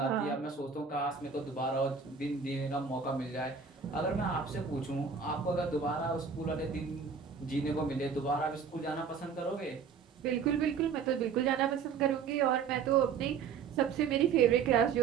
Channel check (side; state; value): left; quieter; 6.2 dB